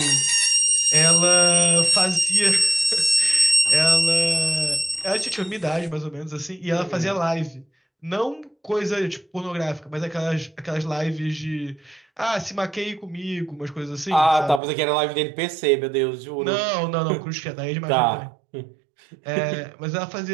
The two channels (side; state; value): left; drops out; at 14.6 s